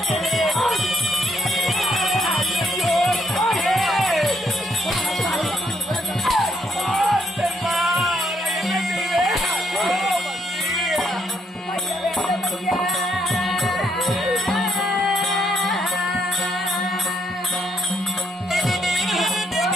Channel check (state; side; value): normal; both; correlation 0.73